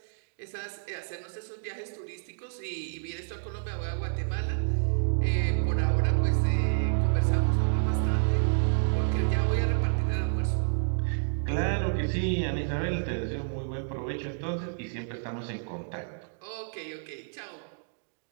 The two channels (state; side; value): silent; left; digital silence